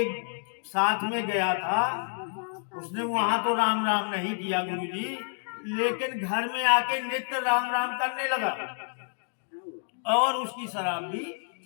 साथ में गया था उसने वहां तो राम राम नहीं किया गुरुजी, लेकिन घर में आके नित्य राम राम करने लगा और उसकी शराब भी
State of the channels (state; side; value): silent; right; digital silence